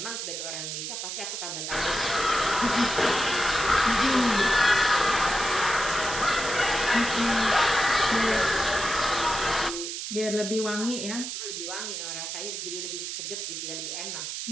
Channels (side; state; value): right; noise; hiss, 5 dB below the sound